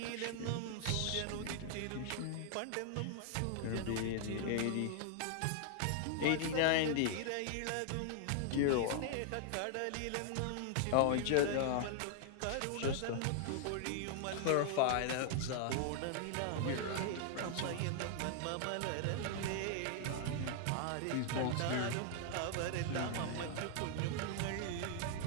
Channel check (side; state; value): both; different; correlation 0.00